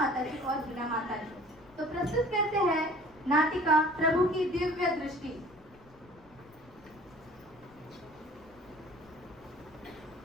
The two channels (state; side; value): noise; left; rumble, 26 dB below the sound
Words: जी और हिना माता जी। तो प्रस्तुत करते हैं नाटिका प्रभु की दिव्य दृष्टि।